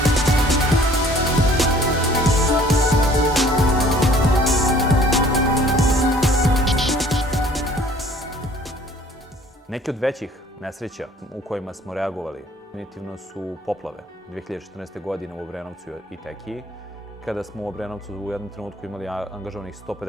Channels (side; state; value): both; normal; correlation 0.55